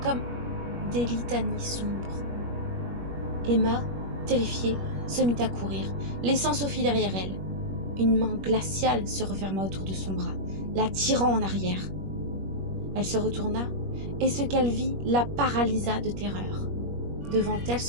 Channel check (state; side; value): late; left; 21 ms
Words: comme des litanies sombres. Emma, terrifiée, se mit à courir, laissant Sophie derrière elle. Une main glaciale se referma autour de son bras, la tirant en arrière. Elle se retourna, et ce qu'elle vit la paralysa de terreur. Devant elle